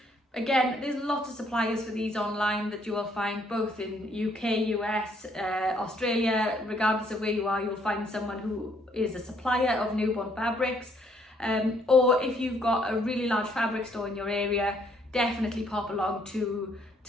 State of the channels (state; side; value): normal; both; correlation 0.67